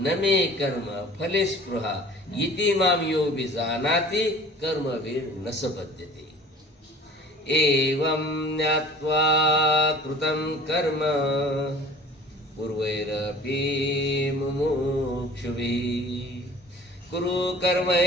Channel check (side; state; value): both; normal; correlation 0.46